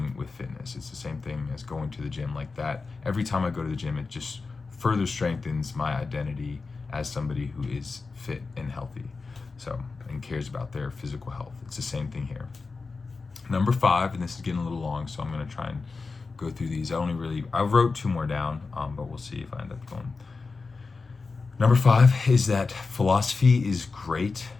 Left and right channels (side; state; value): right; quieter; 4.2 dB